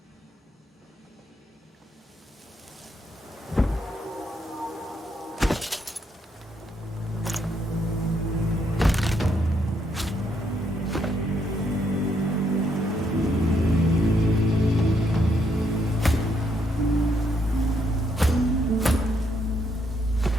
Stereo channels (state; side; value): normal; both; correlation 0.74